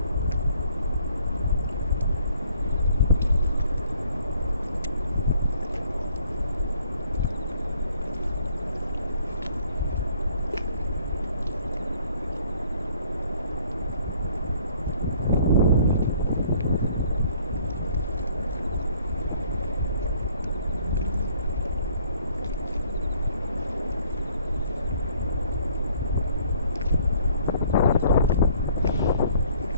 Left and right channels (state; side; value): inverted; both; correlation -0.61